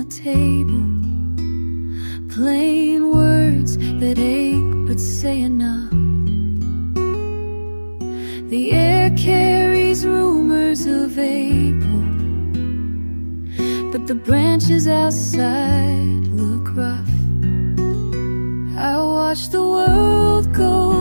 table, plain words that ache but say enough. The air carries rumors of April, but the branches outside look rough. I watch the world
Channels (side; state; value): both; inverted; correlation -1.00